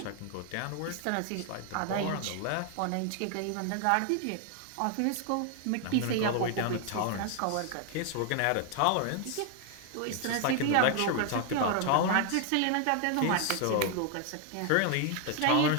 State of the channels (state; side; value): different; both; correlation 0.00